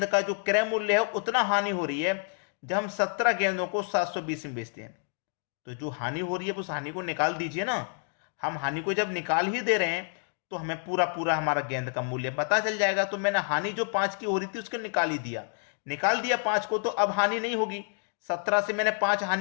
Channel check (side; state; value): right; silent; 56 dB below the other